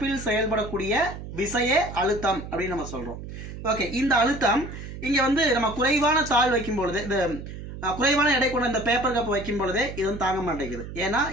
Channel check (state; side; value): noise; right; hum, 10 dB below the sound